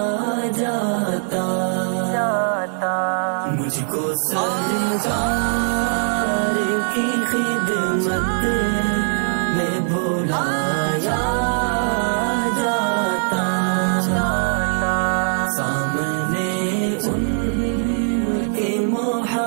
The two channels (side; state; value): left; silent; digital silence